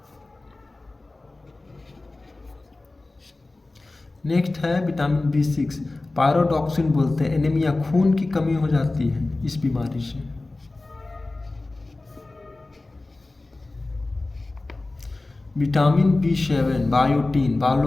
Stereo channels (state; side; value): quieter; right; 3.1 dB